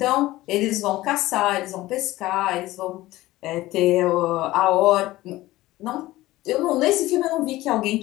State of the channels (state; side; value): quieter; right; 17.4 dB